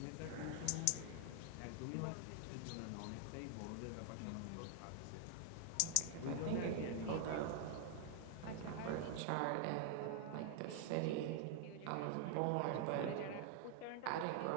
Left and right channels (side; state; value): both; different; correlation 0.00